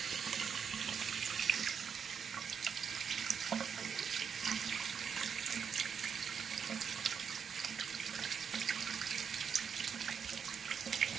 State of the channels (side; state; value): left; quieter; 6.9 dB